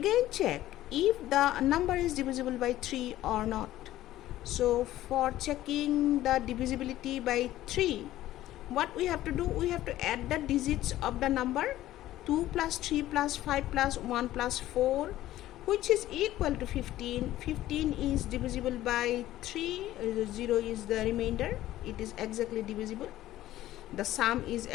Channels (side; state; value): right; quieter; 14.5 dB